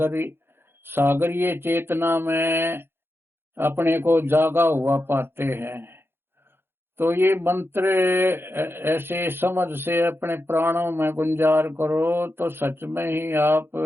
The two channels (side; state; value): left; late; 0.11 ms